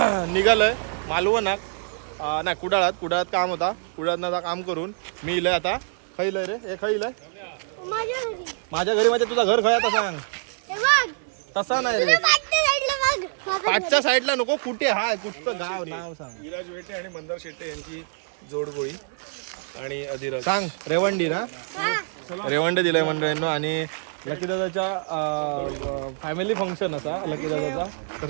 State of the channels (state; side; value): silent; left; 62 dB below the other